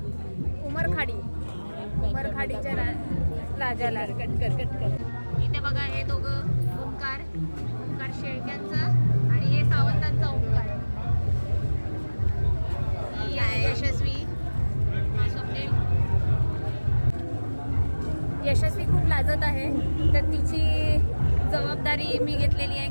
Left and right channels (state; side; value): inverted; both; correlation -1.00